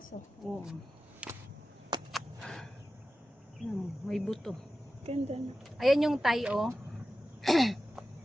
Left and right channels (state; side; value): normal; both; correlation 0.94